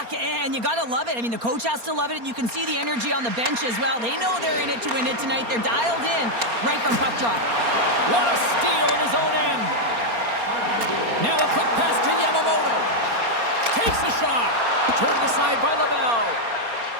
and you got to love it. I mean, the coach has to love it, and you can see the energy on the bench as well. They know they're in it to win it tonight. They're dialed in right from puck drop. What a steal in his own end. Now a quick pass to Yamamoto. Takes the shot. Turned aside by LaBelle.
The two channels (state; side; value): late; left; 4.3 ms